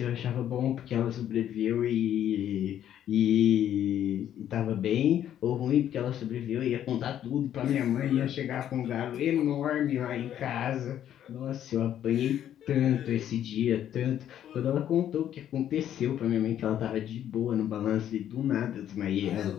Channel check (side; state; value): right; quieter; 10.7 dB